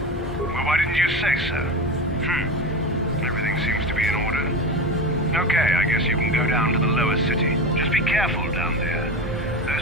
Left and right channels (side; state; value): both; normal; correlation 0.24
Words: Well, why didn't you say so? Everything seems to be in order. Okay, I guess you can go down to the lower city. Just be careful down there.